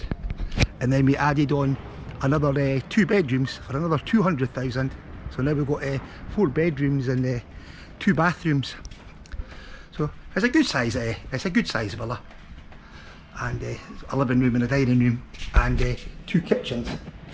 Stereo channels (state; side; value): identical; both; correlation 1.00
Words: and then we added on another 2 bedrooms for another 200,000. So now we've got 4 bedrooms and 2 bathrooms. So it's a good size. It's a good size villa, and a living room and a dining room, and 2 kitchens.